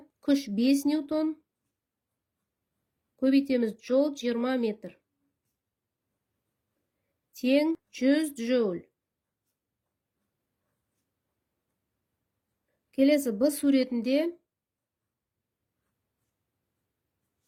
күш 5 ньютон көбейтеміз жол 20 метр. Тең 100 джоуль. Келесі Б суретінде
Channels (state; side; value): identical; both; correlation 1.00